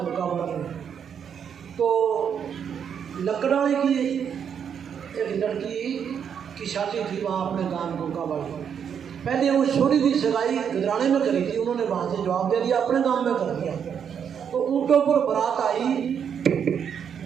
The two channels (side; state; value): left; quieter; 7.8 dB